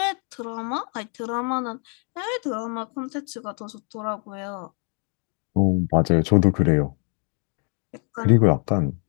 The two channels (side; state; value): right; quieter; 38.8 dB